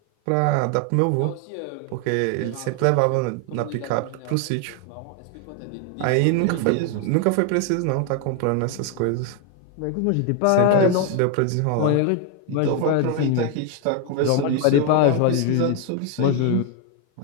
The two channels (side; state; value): both; different; correlation 0.01